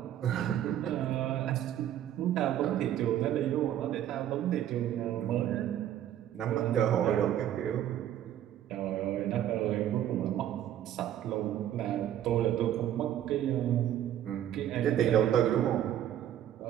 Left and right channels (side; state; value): left; quieter; 11.3 dB